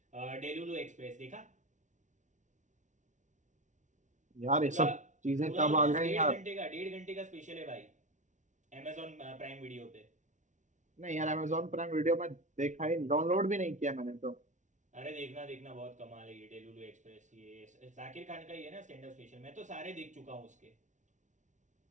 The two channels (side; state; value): left; late; 0.36 ms